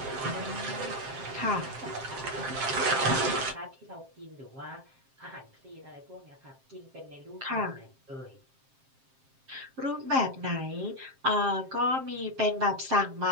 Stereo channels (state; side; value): late; left; 7.6 ms